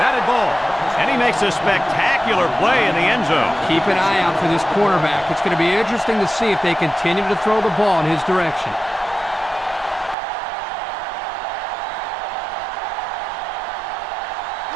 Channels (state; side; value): drops out; left; at 10.2 s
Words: ball. And he makes a spectacular play in the end zone. Keep an eye out for this quarterback. It's going to be interesting to see if they continue to throw the ball in his direction.